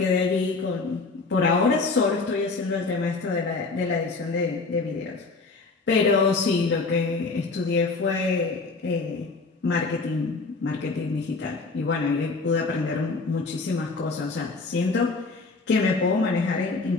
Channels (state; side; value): quieter; right; 3.9 dB